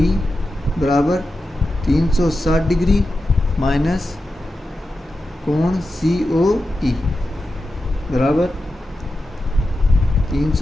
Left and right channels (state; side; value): normal; both; correlation 0.91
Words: बराबर 360 डिग्री माइनस कोण COE बराबर